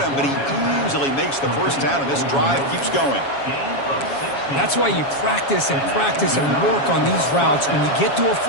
him, but he easily makes the first down, and this drive keeps going. That's why you practice and work on these routes. When you get to a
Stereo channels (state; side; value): late; right; 7.2 ms